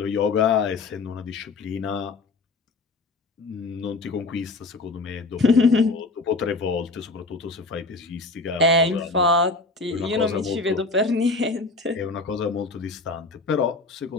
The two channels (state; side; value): quieter; right; 3.4 dB